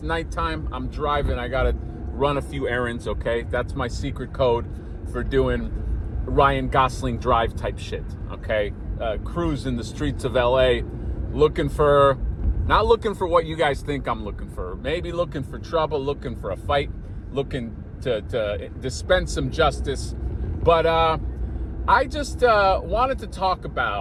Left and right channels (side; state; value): both; identical; correlation 1.00